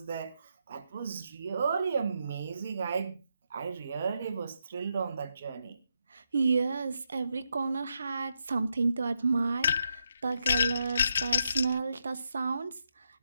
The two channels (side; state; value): both; inverted; correlation -0.82